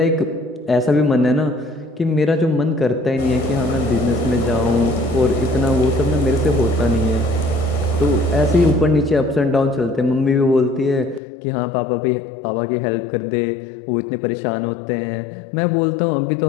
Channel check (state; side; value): drops out; right; at 11.2 s